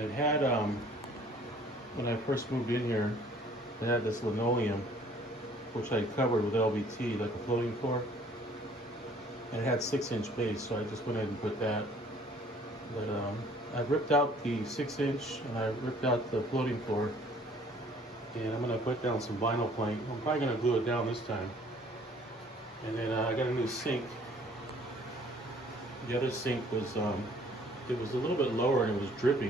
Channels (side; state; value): both; normal; correlation 0.56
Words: had, when I first moved in here, it had this linoleum, which I covered with LVT, like a floating floor. And it had 6-inch base, so I just went ahead and put that. But I ripped out the 6-inch and I ripped out the floating floor. And I'm gonna put down some vinyl plank. I'm probably gonna glue it down this time. And then I got a new sink. The other sink was, it was a little bit lower and it was